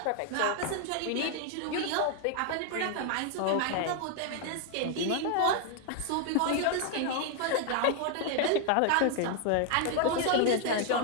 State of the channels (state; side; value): different; both; correlation 0.00